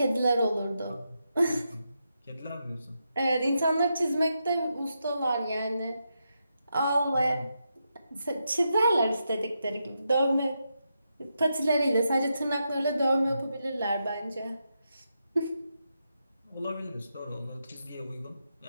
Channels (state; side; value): inverted; both; correlation -0.85